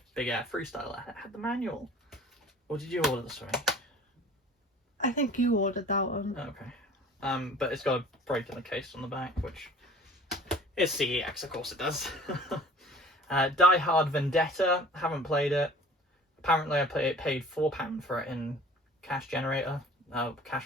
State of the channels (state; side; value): normal; both; correlation 0.46